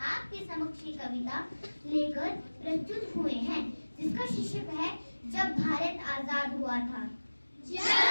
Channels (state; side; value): inverted; both; correlation -1.00